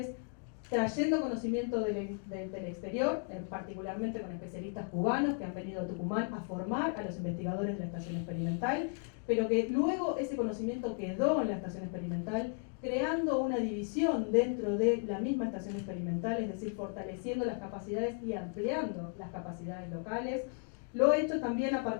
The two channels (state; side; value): quieter; right; 39.4 dB